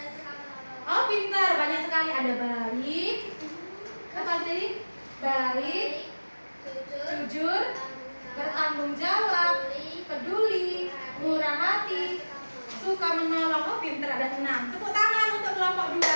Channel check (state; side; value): inverted; both; correlation -1.00